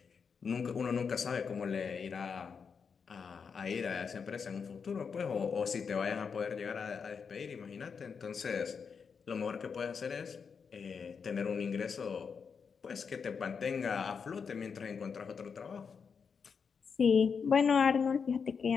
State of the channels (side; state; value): right; quieter; 6.0 dB